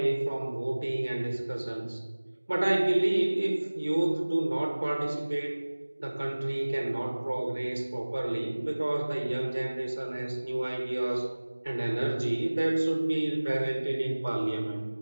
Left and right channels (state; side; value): inverted; both; correlation -1.00